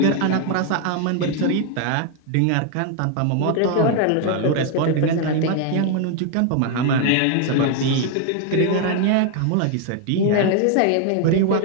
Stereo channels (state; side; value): different; both; correlation 0.00